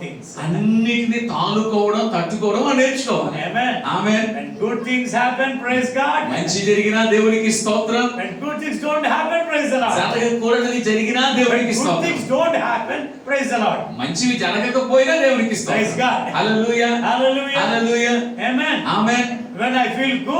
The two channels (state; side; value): identical; both; correlation 1.00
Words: things. అన్నిటిని తాళుకోవడం తట్టుకోవడం అని నేర్చుకోవాలి. Amen. Amen. When good things happen, praise God. మంచి జరిగినా దేవునికి స్తోత్రం. When good things don't happen, praise the Lord. జరగకూడనిది జరిగినా When దేవునికి good స్తోత్రం. things don't happen, praise the Lord. మంచివి జరగకపోయినా దేవునికి స్తోత్రం. Praise God. Hallelujah. Hallelujah. Hallelujah. Amen. Amen. When I feel